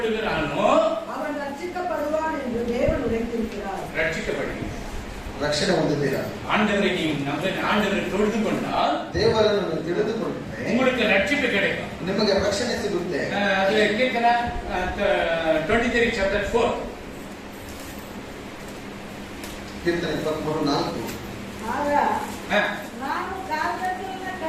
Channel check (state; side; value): identical; both; correlation 1.00